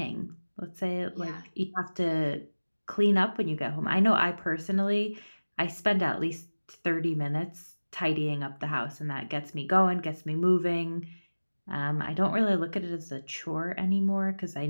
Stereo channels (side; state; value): both; inverted; correlation -1.00